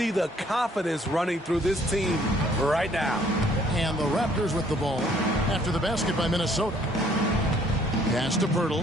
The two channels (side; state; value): both; normal; correlation 0.61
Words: the confidence running through this team right now. And the Raptors with the ball after the basket by Minnesota. Pass to